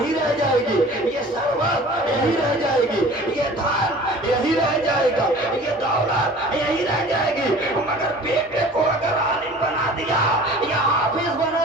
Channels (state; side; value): normal; both; correlation 0.45